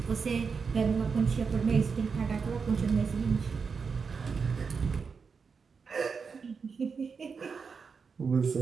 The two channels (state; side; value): quieter; left; 5.5 dB